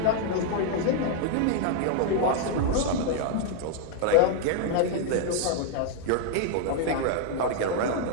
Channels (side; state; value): both; different; correlation 0.00